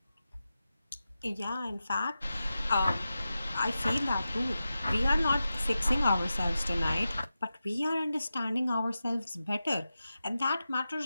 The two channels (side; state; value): both; inverted; correlation -0.92